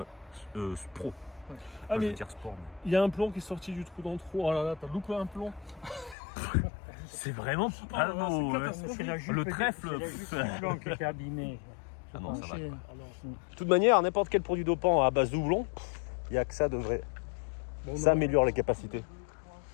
Pro. Ah, Enfin, je mais veux dire sport. mais- il y a un plomb qui est sorti du trou dans le trou. Oh là là, t'as loupé un plomb. C'est vraiment pas beau, hein. C'est la jupe Le du- trèfle, c'est la jupe du plomb qui était abîmée. Ah non, ça va. C'est- De toute manière, n'importe quel produit dopant à base de houblon, il n'y a que ça devrait. Bon, Ça non. améliore les capacités.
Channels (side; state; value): right; drops out; at 6.2 s